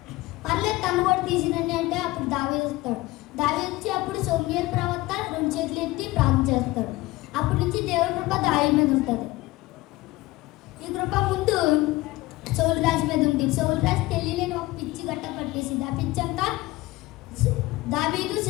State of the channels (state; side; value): quieter; right; 19.3 dB